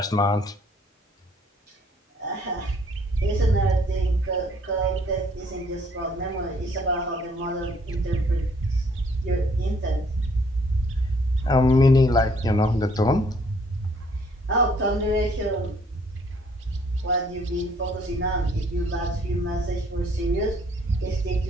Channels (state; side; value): normal; both; correlation 0.63